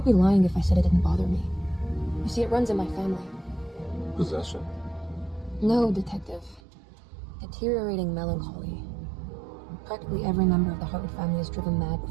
be lying if I said it didn't bother me. You see, it runs in my family. Possession? No, detective. Deteriorating melancholy. Practically every member of the Hartwood family is driven mad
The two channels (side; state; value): left; drops out; at 6.6 s